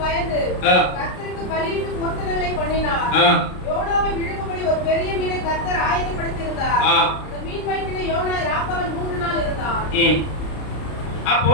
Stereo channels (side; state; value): right; late; 33 ms